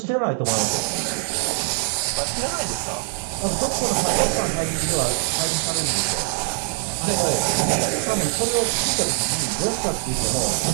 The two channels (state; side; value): silent; left; digital silence